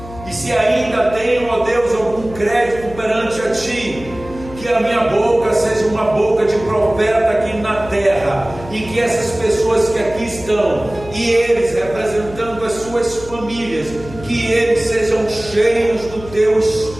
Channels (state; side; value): noise; left; hum, 15 dB below the sound